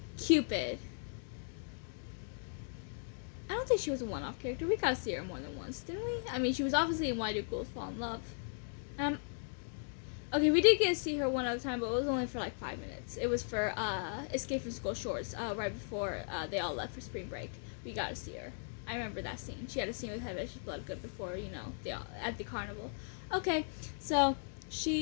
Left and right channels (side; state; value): right; silent; digital silence